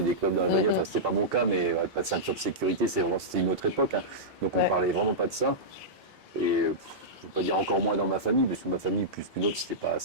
des clopes dans la bagnole, enfin c'était pas mon cas, mais pas de ceinture de sécurité, c'était une autre époque, hein. Donc on parlait vraiment pas de ça. Et je veux pas dire encore moins dans ma famille, parce que ma famille, plus qu'une autre,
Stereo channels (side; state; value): both; normal; correlation -0.12